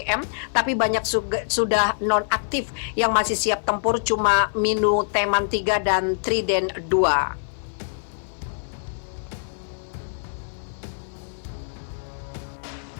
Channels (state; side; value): silent; right; 55 dB below the other